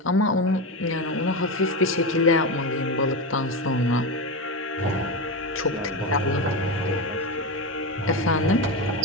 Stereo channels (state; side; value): normal; both; correlation 0.16